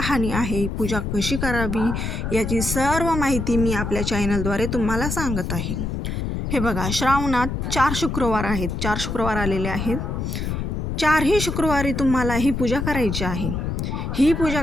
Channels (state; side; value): noise; left; rumble, 3 dB below the sound